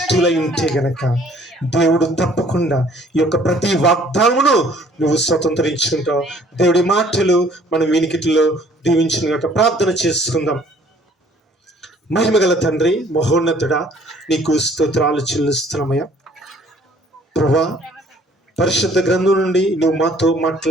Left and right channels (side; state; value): both; normal; correlation 0.57